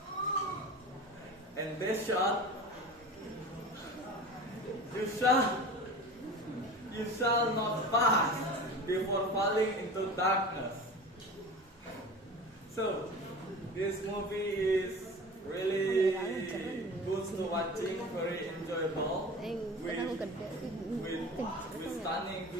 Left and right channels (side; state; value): both; normal; correlation 0.34